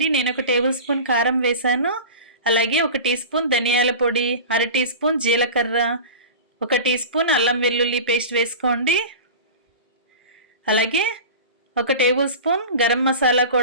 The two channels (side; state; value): both; inverted; correlation -0.32